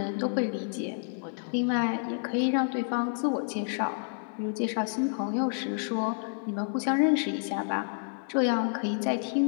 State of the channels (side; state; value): right; silent; digital silence